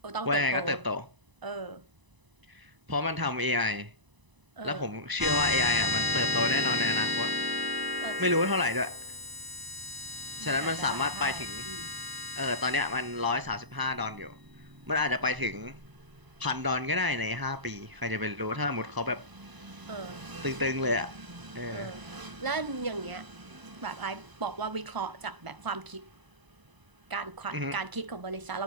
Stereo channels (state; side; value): late; left; 1.0 ms